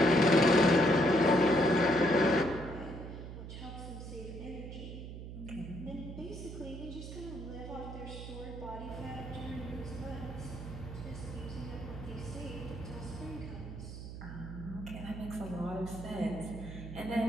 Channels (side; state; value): right; noise; hum, 10 dB below the sound